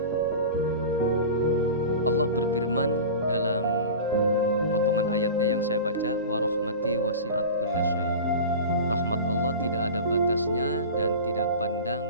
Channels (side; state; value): both; inverted; correlation -0.32